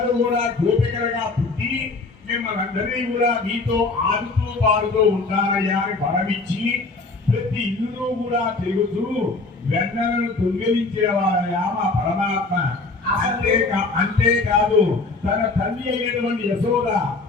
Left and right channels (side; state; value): right; quieter; 3.6 dB